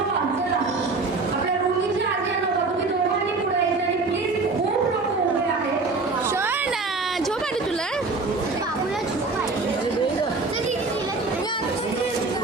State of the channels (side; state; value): left; quieter; 3.8 dB